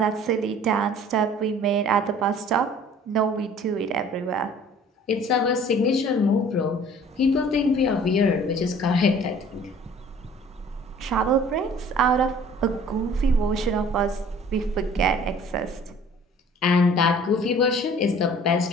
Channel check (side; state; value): both; normal; correlation 0.50